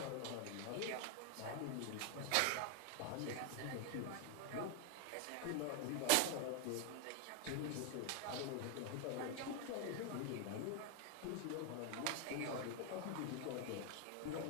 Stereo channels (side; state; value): both; different; correlation 0.00